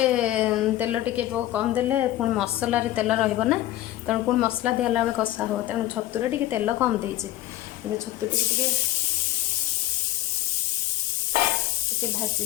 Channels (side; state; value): right; quieter; 14.6 dB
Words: तेल टे कम देले पुणी मसलार तेल रहा तेणु पुणी मसला दिहला बेले कषा हो तेणु छतुरे टे तेल कम देसी छतु टे